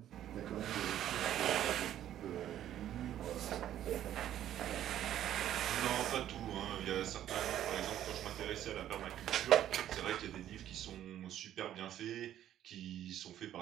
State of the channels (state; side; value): quieter; left; 11.6 dB